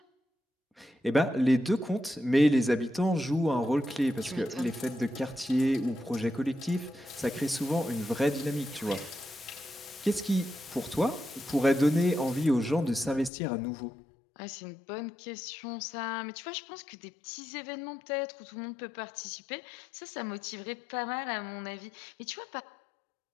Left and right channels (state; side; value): drops out; right; at 13.3 s